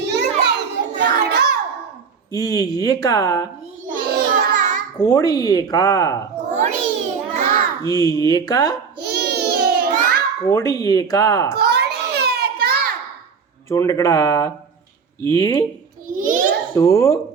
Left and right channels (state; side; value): quieter; left; 5.8 dB